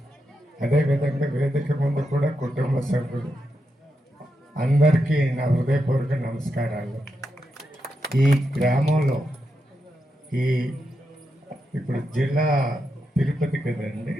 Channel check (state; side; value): normal; both; correlation 0.85